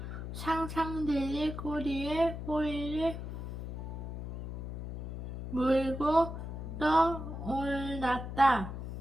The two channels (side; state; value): left; noise; hum, 7 dB below the sound